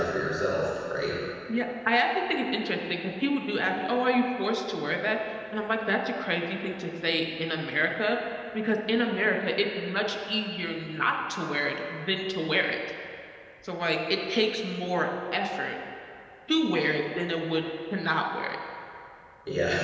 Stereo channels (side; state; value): both; identical; correlation 1.00